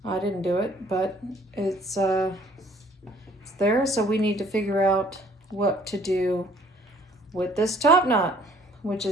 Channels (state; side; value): normal; both; correlation 0.57